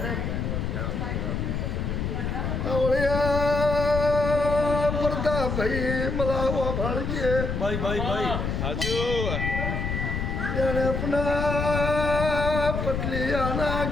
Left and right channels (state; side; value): noise; left; rumble, 2 dB below the sound